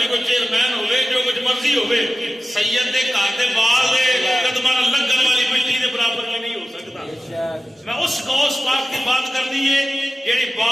کوئی چیئرمین ہوئے جو کچھ مرضی ہوئے سید دے گھر دے بال دے قدمہ لگن والی مٹی دے برابر میں نہیں ہو سکتا میں اس غوث پاک کی بات کرنی ہے جیڑی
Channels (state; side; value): normal; both; correlation 0.96